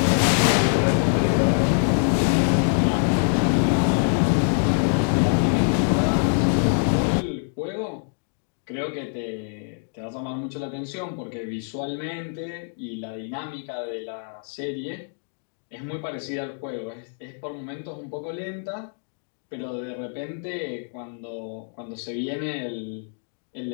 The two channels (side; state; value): right; silent; 62 dB below the other